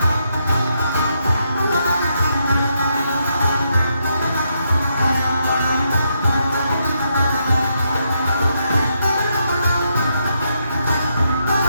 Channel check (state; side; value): inverted; both; correlation -0.79